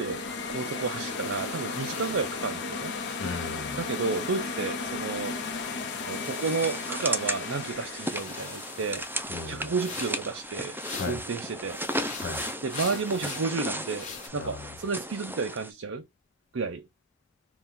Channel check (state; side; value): normal; both; correlation -0.03